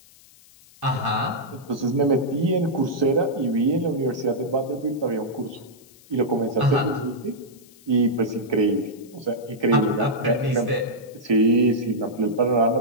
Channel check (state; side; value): noise; left; hiss, 26 dB below the sound